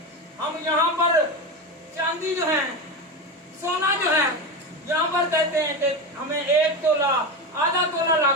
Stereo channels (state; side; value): normal; both; correlation 0.19